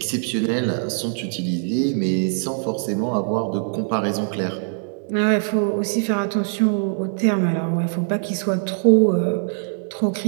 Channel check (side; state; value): left; silent; digital silence